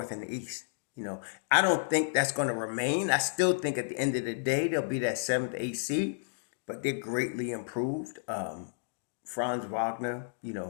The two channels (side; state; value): right; silent; digital silence